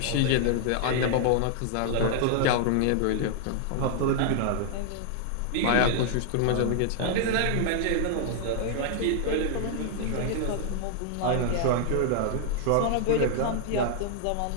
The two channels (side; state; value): both; different; correlation -0.01